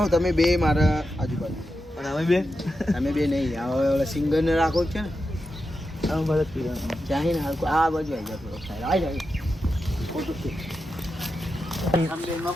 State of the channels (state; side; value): normal; both; correlation 0.89